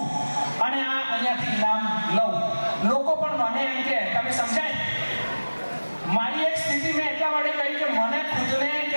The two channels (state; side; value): inverted; both; correlation -1.00